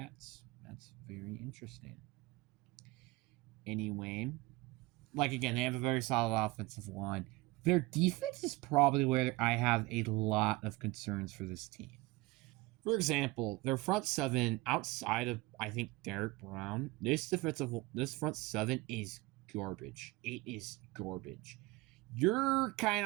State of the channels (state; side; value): quieter; left; 21.4 dB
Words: That's very interesting. Anyway, like, again, they have a very solid offensive line. Their defense is probably where I have a lot of concerns for this team. For example, their front seven, outside of, I think, Derek Brown, this front seven is garbage. It is garbage. You're kind